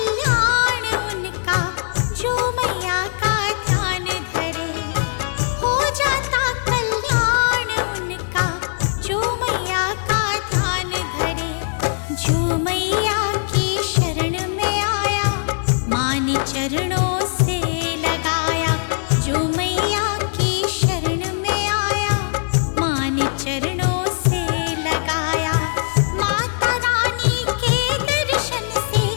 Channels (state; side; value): silent; right; 65 dB below the other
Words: उनका जो मैया का ध्यान धरे। हो जाता कल्याण उनका जो मैया का ध्यान धरे। जो मैया की शरण में आया, माँ ने चरणों से लगाया। जो मैया की शरण में आया, माँ ने चरणों से लगाया। माता रानी के दर्शन से